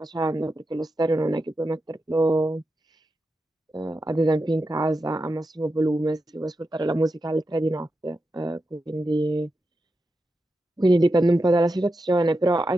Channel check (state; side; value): normal; both; correlation 0.89